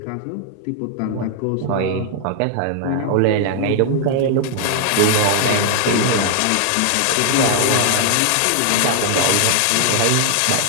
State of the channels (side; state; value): both; different; correlation 0.00